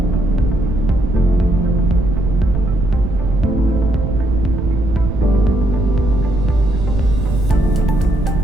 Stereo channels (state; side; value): noise; right; rumble, 3 dB below the sound